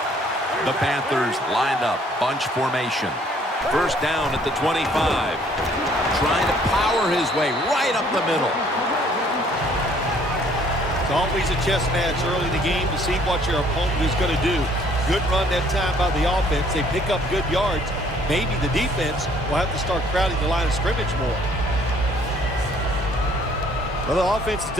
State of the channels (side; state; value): both; normal; correlation 0.61